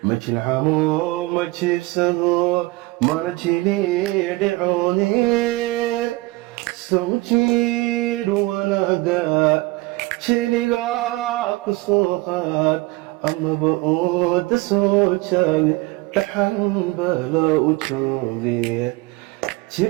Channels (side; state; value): left; quieter; 22.1 dB